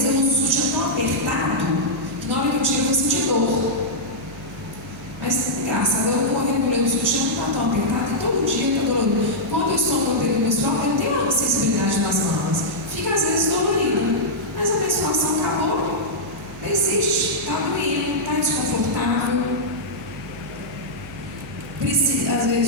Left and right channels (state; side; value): noise; right; hum, 17 dB below the sound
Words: eu uso um sutiã tão apertado que na hora que eu tiro eu vou sentir dor. Mas, engraçado, eu regulei o sutiã, não está tão apertado, e todo dia está dolorido. Quando eu estou no período menstrual, eu tenho a sensibilidade nas mamas. Fica às vezes dolorida. Mas a menstruação acabou, persiste, está doendo, está desconfortável. Às